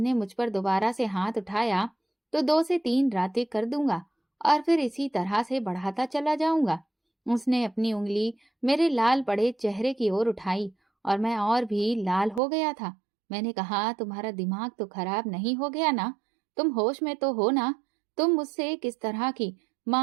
मुझ पर दोबारा से हाथ उठाया तो 2 से 3 रातें कर दूंगा, और फिर इसी तरह से बढ़ाता चला जाऊंगा। उसने अपनी उंगली मेरे लाल पड़े चेहरे की ओर उठाई और मैं और भी लाल हो गया था। मैंने कहा, तुम्हारा दिमाग तो खराब नहीं हो गया ना? तुम होश में तो हो ना? तुम मुझसे किस तरह की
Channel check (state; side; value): drops out; left; at 12.4 s